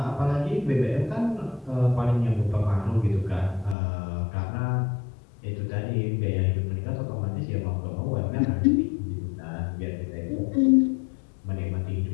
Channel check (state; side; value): drops out; right; at 3.8 s